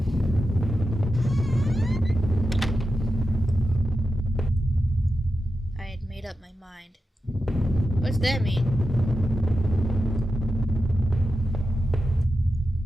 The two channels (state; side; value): normal; both; correlation 0.91